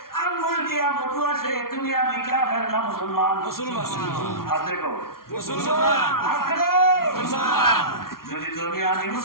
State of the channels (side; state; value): right; late; 0.93 ms